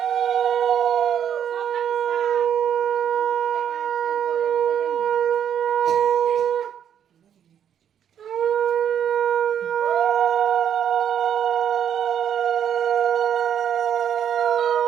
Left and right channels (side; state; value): left; quieter; 9.1 dB